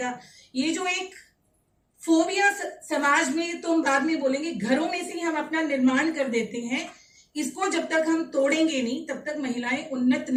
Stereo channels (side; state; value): both; identical; correlation 1.00